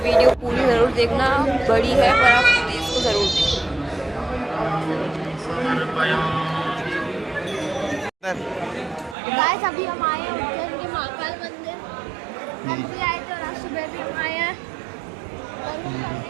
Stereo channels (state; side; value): drops out; left; at 9.2 s